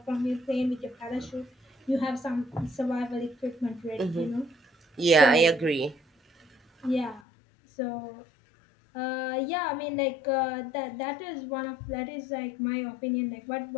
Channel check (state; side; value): drops out; right; at 7.2 s